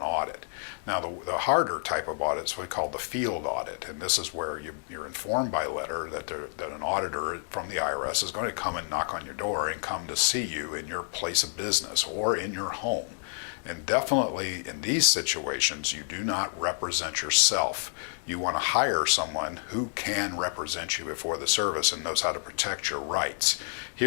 audit. Now the harder type of audit is what we call the field audit, and this is where you're informed by letter that an auditor from the IRS is going to come and knock on your door and come to see you in your place of business or in your home. And definitely in these situations, you do not represent yourself. You want to hire someone who can represent you before the service and knows how to protect your rights.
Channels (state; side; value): silent; right; digital silence